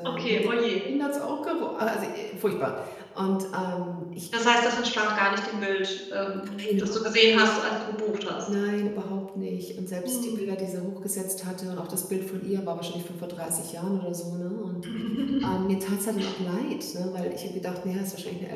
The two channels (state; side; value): identical; both; correlation 1.00